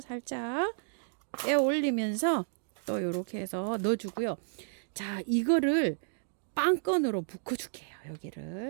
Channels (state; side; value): silent; left; digital silence